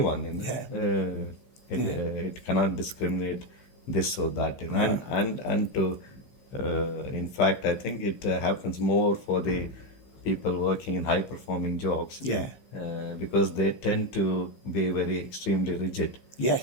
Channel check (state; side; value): late; right; 15 ms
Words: It cannot discriminate this or that. And to in fact, I think it happens more for the people working in high performing jobs. Because they tend to be very extremely rigid.